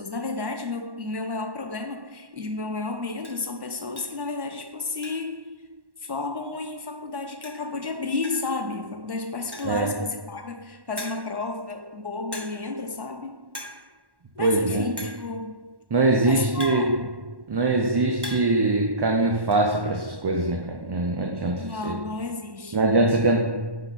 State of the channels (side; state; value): left; late; 1.1 ms